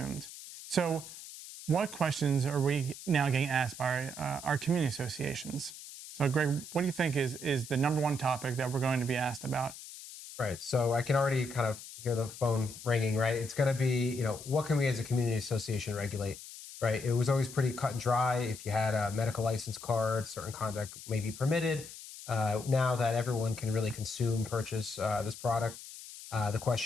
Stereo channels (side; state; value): left; noise; hiss, 14 dB below the sound